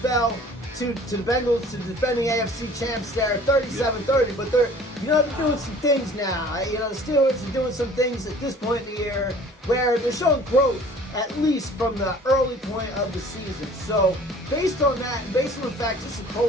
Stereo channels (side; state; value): both; normal; correlation 0.49